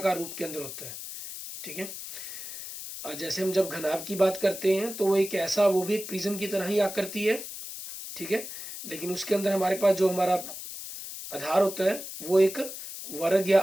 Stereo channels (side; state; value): left; noise; hiss, 9 dB below the sound